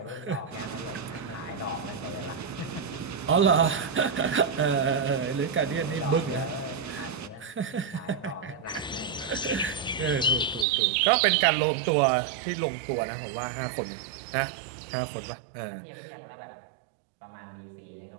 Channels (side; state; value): left; drops out; at 10.7 s